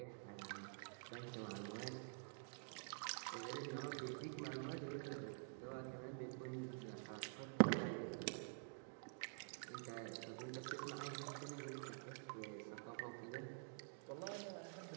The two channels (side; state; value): left; silent; digital silence